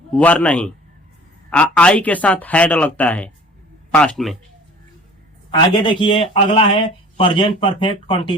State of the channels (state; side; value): normal; both; correlation 0.47